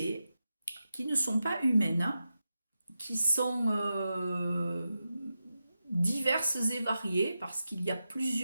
qui ne sont pas humaines, qui sont diverses et variées, parce qu'il y a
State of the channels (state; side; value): inverted; both; correlation -0.90